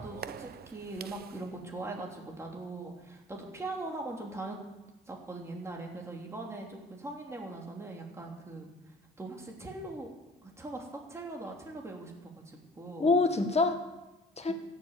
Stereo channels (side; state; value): both; normal; correlation 0.48